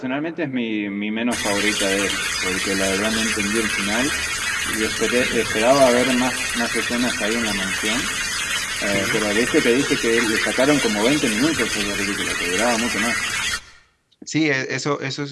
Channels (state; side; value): identical; both; correlation 1.00